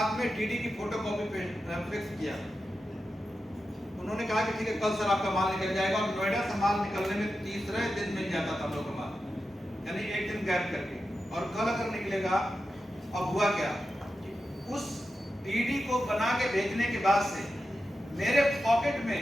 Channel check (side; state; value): both; normal; correlation 0.90